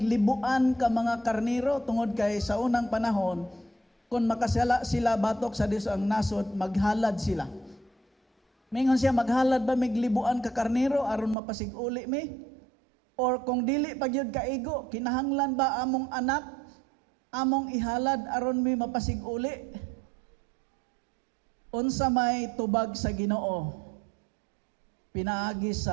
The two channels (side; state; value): left; drops out; at 11.4 s